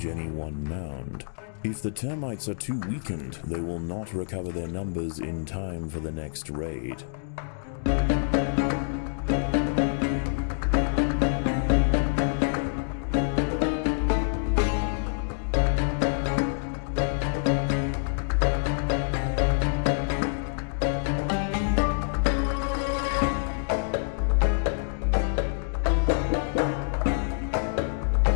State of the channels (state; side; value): silent; right; digital silence